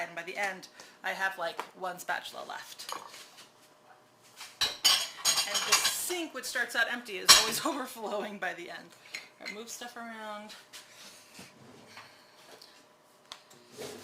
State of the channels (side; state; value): both; identical; correlation 1.00